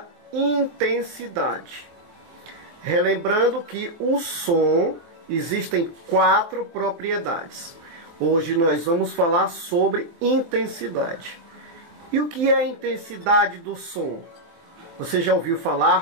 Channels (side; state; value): left; late; 23 ms